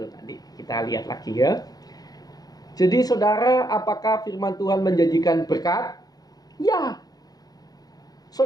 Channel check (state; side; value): late; right; 0.19 ms